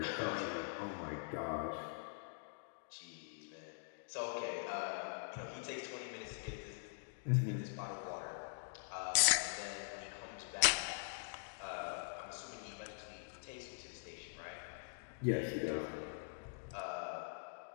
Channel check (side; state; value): right; silent; digital silence